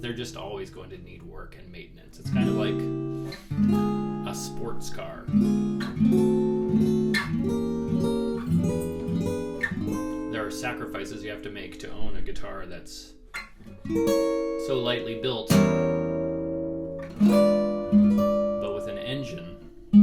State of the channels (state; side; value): identical; both; correlation 1.00